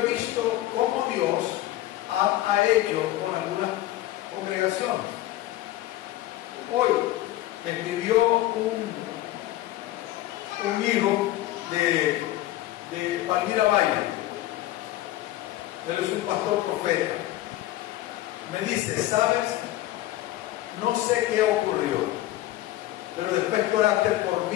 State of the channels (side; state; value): right; quieter; 15.5 dB